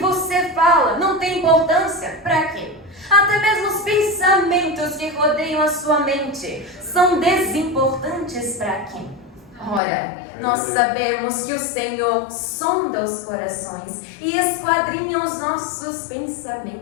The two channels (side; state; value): right; drops out; at 9.8 s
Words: fala não tem importância para quem? Até mesmo os pensamentos que rodeiam a sua mente são desimportantes para quem? Ora, nós sabemos que o Senhor sonda os corações e esquadrinha os nossos